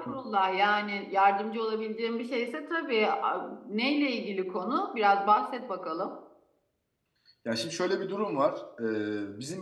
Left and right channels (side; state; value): both; identical; correlation 1.00